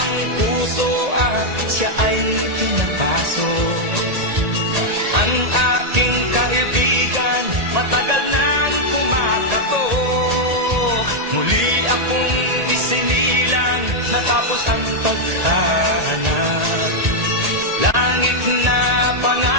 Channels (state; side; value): late; left; 1.8 ms